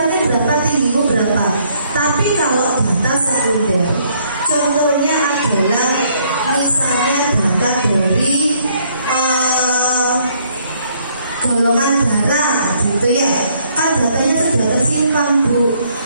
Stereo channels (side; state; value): both; inverted; correlation -0.67